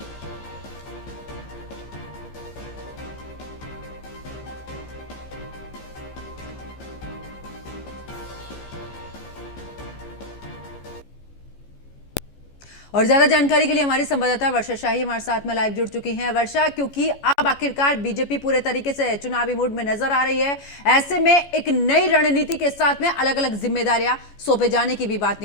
और ज्यादा जानकारी के लिए हमारी संवाददाता वर्षा शाही हमारे साथ में लाइव जुड़ चुकी हैं। वर्षा, क्योंकि अब आखिरकार बीजेपी पूरे तरीके से चुनावी मूड में नजर आ रही है, ऐसे में एक नई रणनीति के साथ में अलग अलग जिम्मेदारियां सौंपे जाने की भी बात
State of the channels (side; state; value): right; late; 14 ms